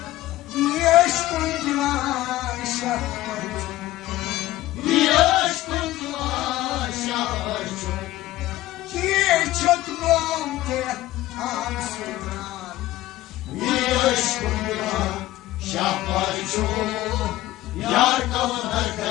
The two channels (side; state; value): right; quieter; 15.9 dB